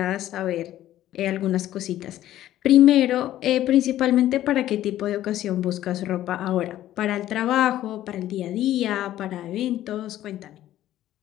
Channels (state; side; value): quieter; right; 13.3 dB